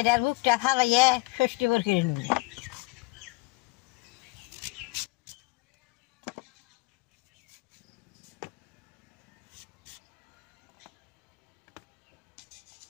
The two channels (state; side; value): quieter; right; 24.6 dB